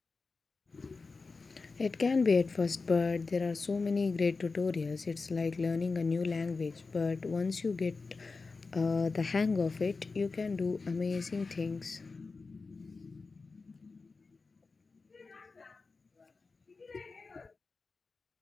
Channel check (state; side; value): quieter; right; 4.2 dB